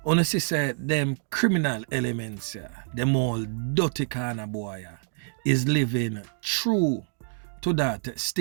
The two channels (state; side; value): silent; left; 60 dB below the other